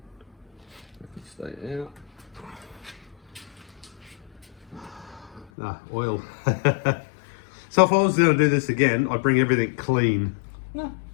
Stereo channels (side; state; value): right; drops out; at 5.5 s